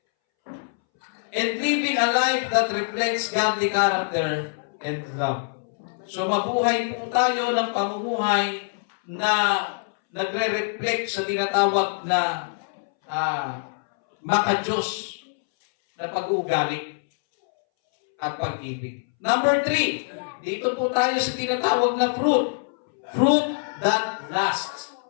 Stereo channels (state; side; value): silent; right; 62 dB below the other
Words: And living a life that reflects godly character and love. So mabuhay po tayo ng pamumuhay na nagre-reflect sa tinatawag na maka-Diyos na pag-uugali at pag-ibig. Number 3, dito po tayo sa tinatawag na fruit. Fruit that lasts.